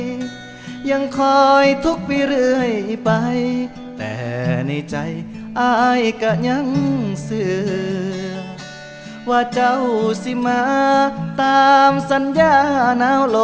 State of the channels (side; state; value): both; identical; correlation 1.00